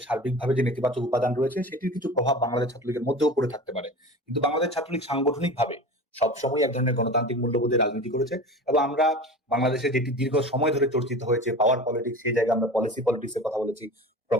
সার্বিকভাবে যে নেতিবাচক উপাদান রয়েছে সেটির কিছু প্রভাব বাংলাদেশ ছাত্রলীগের মধ্যেও পড়ে থাকতে পারে, কিন্তু বাংলাদেশ ছাত্রলীগ সাংগঠনিকভাবে সবসময় এক ধরনের গণতান্ত্রিক মূল্যবোধের রাজনীতি করেছে। এবং আমরা বাংলাদেশে যেটি দীর্ঘ সময় ধরে চর্চিত হয়েছে পাওয়ার পলিটিক্স, সেই জায়গায় আমরা পলিসি পলিটিক্স এর কথা বলেছি,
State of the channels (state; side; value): normal; both; correlation 0.34